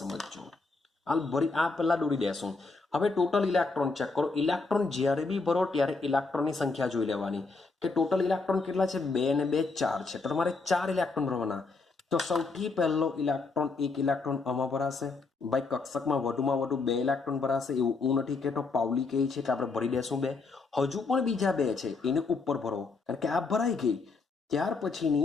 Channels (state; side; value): quieter; right; 4.0 dB